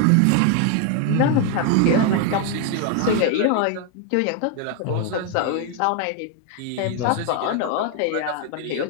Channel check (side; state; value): both; different; correlation 0.00